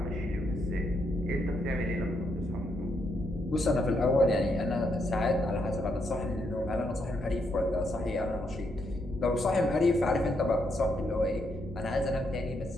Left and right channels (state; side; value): normal; both; correlation 0.78